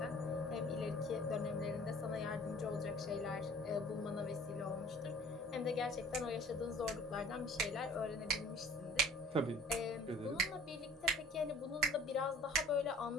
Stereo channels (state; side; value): normal; both; correlation 0.49